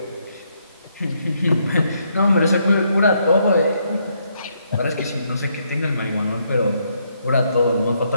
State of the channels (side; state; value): both; inverted; correlation -0.75